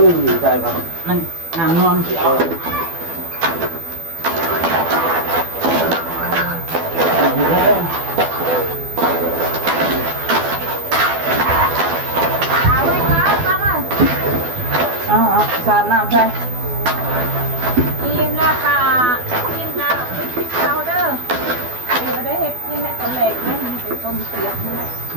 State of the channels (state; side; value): late; left; 12 ms